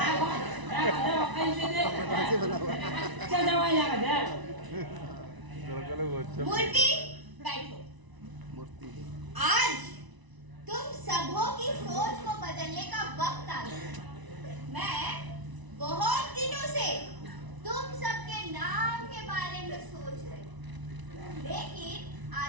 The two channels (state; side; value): late; left; 1.0 ms